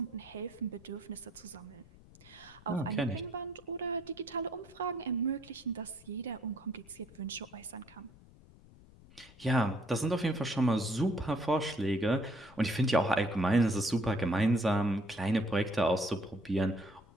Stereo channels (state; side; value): noise; left; rumble, 23 dB below the sound